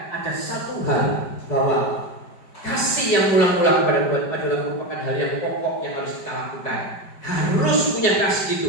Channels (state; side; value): late; right; 5.1 ms